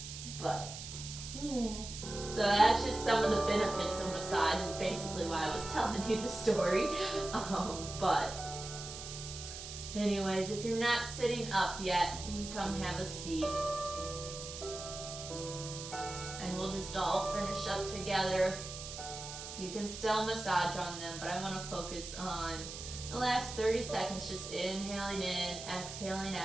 But yes. So that's just some of the benefits of massage, is basically why I was telling you the story. But anyways, if you're not sitting up yet, you can come have a seat. And we'll just all finish up together. You can still massage on them, but I want to focus on the last 30 seconds, just inhaling in, exhaling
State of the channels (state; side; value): noise; right; hiss, 9 dB below the sound